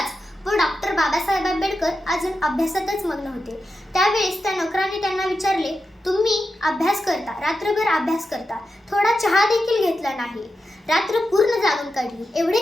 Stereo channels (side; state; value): both; normal; correlation 0.89